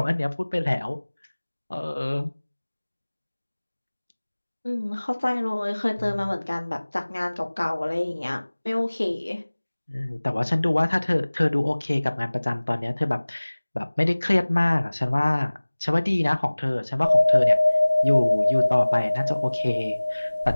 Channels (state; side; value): inverted; both; correlation -1.00